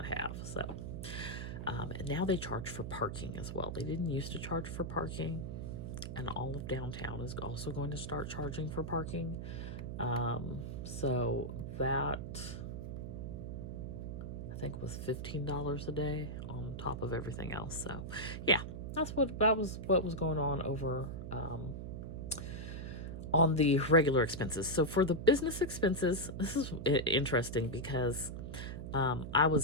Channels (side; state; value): right; noise; hum, 6 dB below the sound